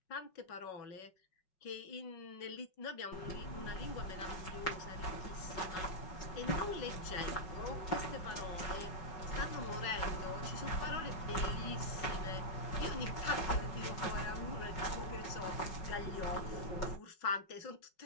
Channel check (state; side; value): late; right; 5.4 ms